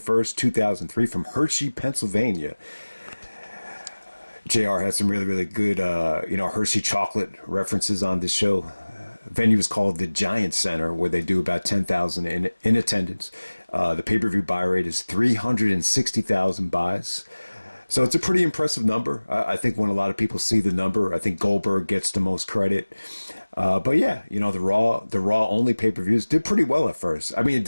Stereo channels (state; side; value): inverted; both; correlation -1.00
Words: 2003 from Hershey, Pennsylvania. JR had some really, really good, Hershey chocolate references on this show. Venue is called the Giant Center, where they do about 10,000 in attendance. The pay-per-view buy rate is 360,000 buys. So it's a pretty impressive number. I think when a lot of people see the number, I think Goldberg gets the most credit. But yeah, the Raw only pay-per-views did pretty well at first. I mean, it